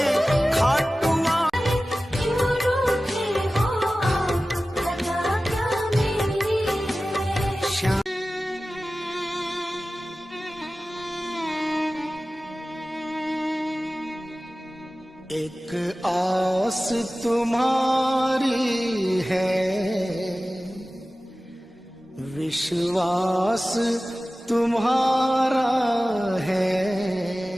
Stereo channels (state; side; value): normal; both; correlation 0.96